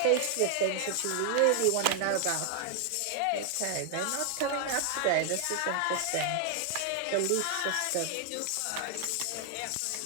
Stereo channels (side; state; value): both; different; correlation 0.00